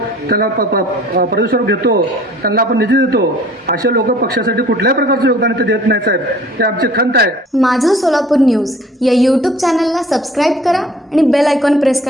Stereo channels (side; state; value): both; normal; correlation 0.51